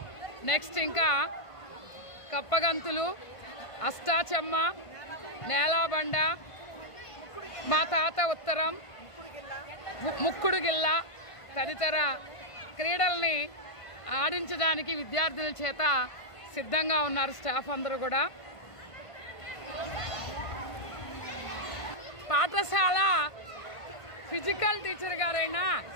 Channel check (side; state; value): right; late; 1.5 ms